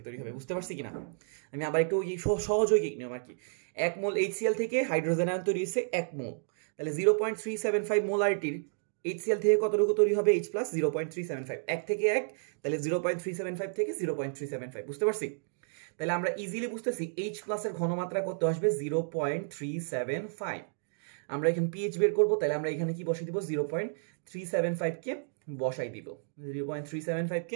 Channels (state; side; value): silent; left; digital silence